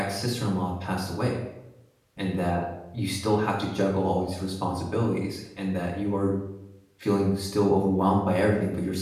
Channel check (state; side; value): identical; both; correlation 1.00